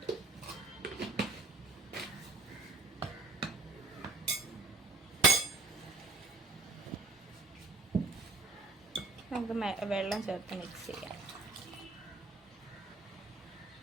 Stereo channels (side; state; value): left; quieter; 3.3 dB